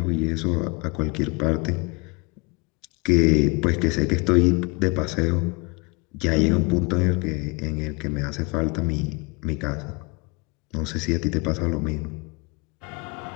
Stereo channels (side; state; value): right; quieter; 29.1 dB